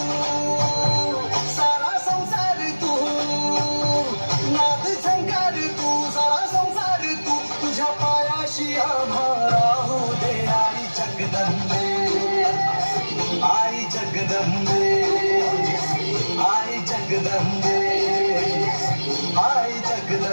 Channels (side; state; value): both; inverted; correlation -1.00